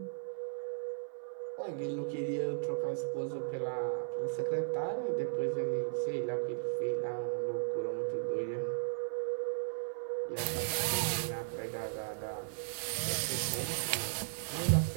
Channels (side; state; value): left; silent; 54 dB below the other